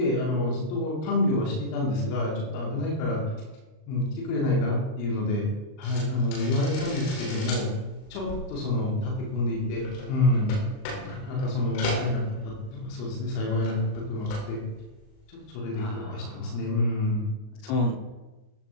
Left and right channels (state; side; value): late; right; 38 ms